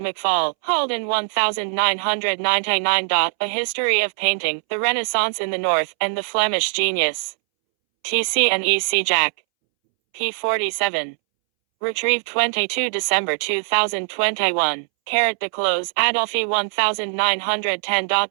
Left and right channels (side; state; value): left; silent; 65 dB below the other